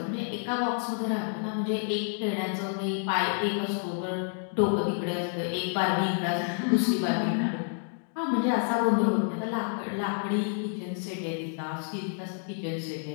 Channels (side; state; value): right; silent; 58 dB below the other